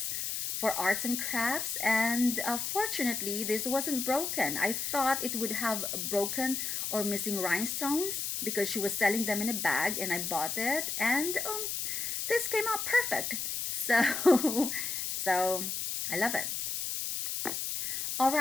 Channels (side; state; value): left; noise; hiss, 2 dB below the sound